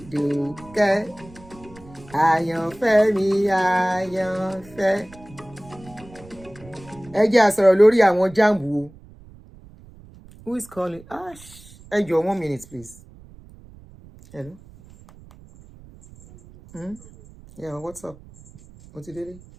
Àyànfẹ́ mi, àyànfẹ́. Ẹ jẹ́ a sọ̀rọ̀ lórí àwọn Jamb o. Who is calling? Ẹ jọ̀ọ́ 1 minute, please. Hello? Yeah, what's up? What's it doing?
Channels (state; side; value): noise; right; rumble, 22 dB below the sound